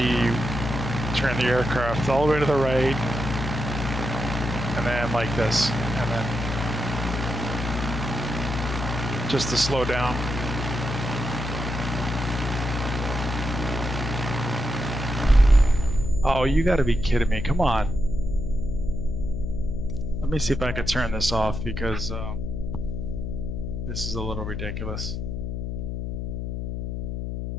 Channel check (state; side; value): noise; left; hum, 3 dB below the sound